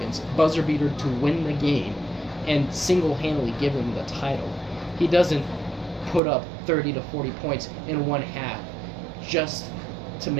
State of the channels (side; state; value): left; drops out; at 6.2 s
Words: Buzzer beater to win the game and single-handedly give him the title. He doesn't put up 30 to 40 points in one half just to